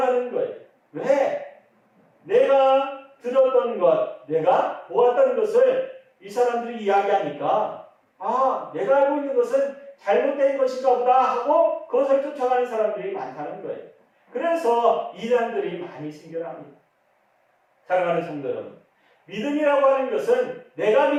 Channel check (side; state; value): both; identical; correlation 1.00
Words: 거예요. 왜? 내가 들었던 것, 내가 보았던 것을 이 사람들이 이야기하니까 내가 알고 있는 것은 잘못된 것인가 보다 하고 그것을 쫓아가는 사람들이 많다는 거예요. 그래서 이단들이 많이 생겨납니다. 사랑하는 성도 여러분, 믿음이라고 하는 것은 내가